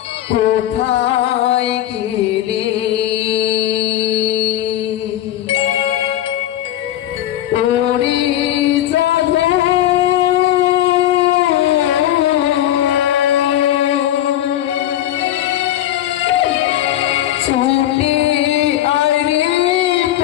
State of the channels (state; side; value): quieter; right; 12.7 dB